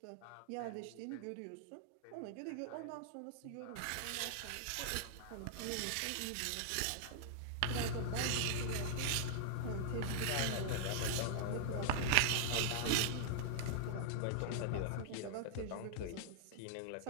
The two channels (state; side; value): different; both; correlation -0.01